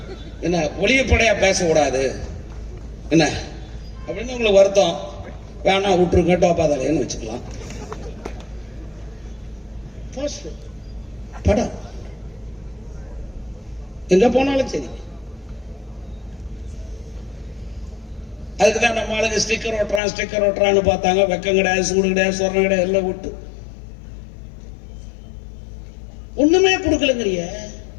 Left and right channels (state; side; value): drops out; right; at 20.0 s